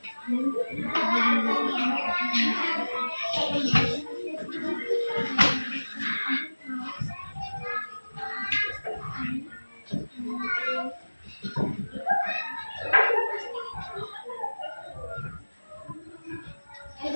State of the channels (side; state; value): both; inverted; correlation -1.00